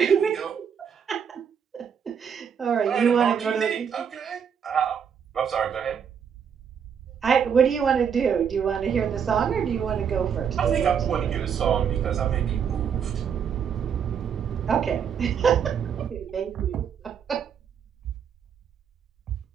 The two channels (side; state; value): left; quieter; 7.5 dB